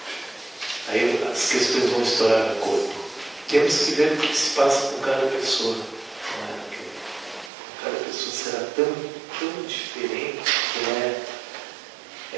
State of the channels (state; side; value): drops out; left; at 7.5 s